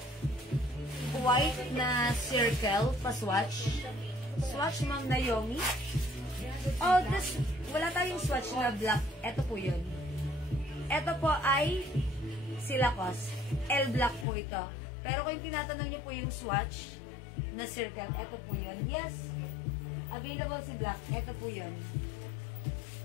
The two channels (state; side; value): drops out; right; at 14.2 s